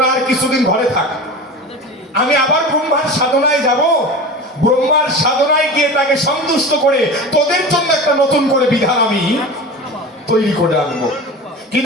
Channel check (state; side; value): normal; both; correlation 0.31